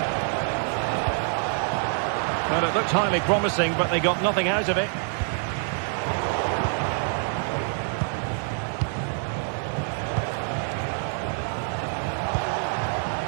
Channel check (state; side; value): silent; left; 56 dB below the other